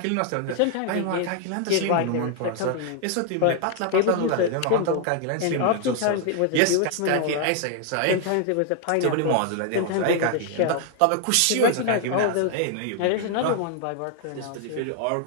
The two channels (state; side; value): different; both; correlation 0.00